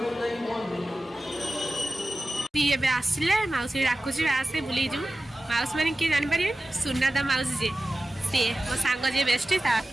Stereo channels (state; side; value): normal; both; correlation 0.94